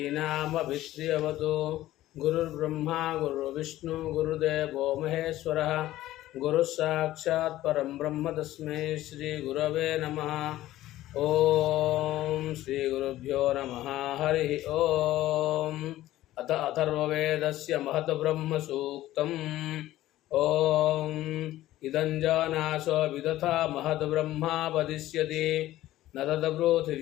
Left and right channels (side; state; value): right; quieter; 15.0 dB